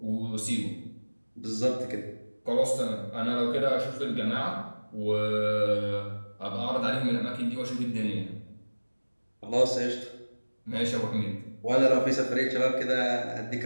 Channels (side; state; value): both; inverted; correlation -1.00